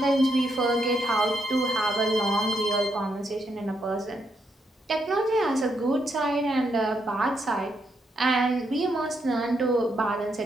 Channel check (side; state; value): both; normal; correlation 0.78